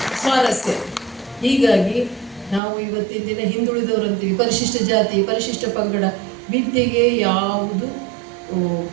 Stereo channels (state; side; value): drops out; left; at 2.6 s